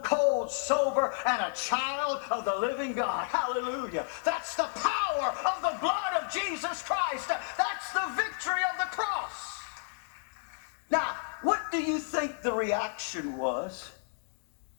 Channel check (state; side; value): silent; right; digital silence